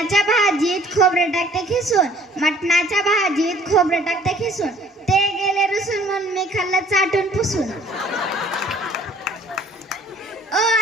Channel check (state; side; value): normal; both; correlation 0.56